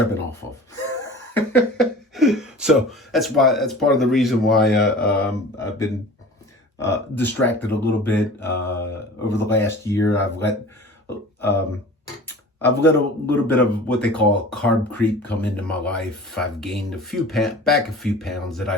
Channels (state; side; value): normal; both; correlation 0.41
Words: been off of. So that's part of the reason why I've been distracted a little bit over the last year. I've let a little bit of what they call carb creep come into my life. I've gained a few pounds that